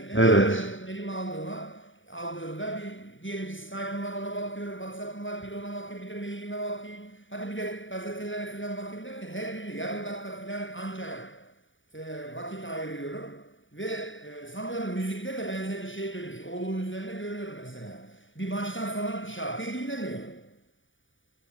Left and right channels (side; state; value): right; late; 0.56 ms